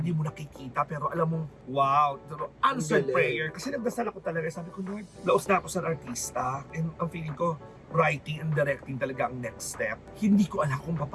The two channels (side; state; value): both; identical; correlation 1.00